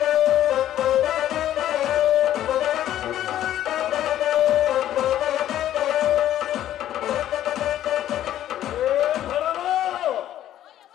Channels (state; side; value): quieter; right; 12.1 dB